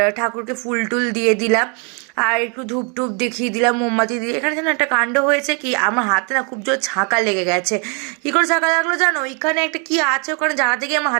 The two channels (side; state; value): left; quieter; 35.8 dB